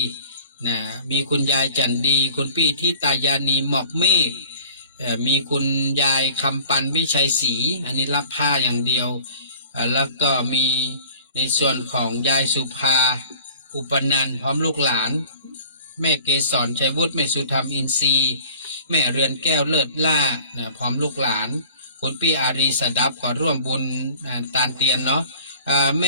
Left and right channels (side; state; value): both; inverted; correlation -0.49